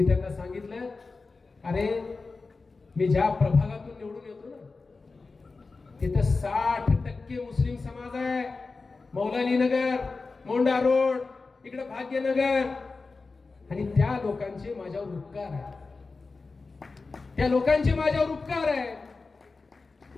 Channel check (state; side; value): quieter; right; 4.0 dB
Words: त्यांना सांगितलं, अरे मी ज्या प्रभागातून निवडून येतो ना, तिथं 60% मुस्लिम समाज आहे. मौलाली नगर, मोंडा रोड, इकडे भाग्यनगर, आणि त्या लोकांचे माझ्यावर उपकार आहे. त्या लोकांचे माझ्यावर उपकार आहे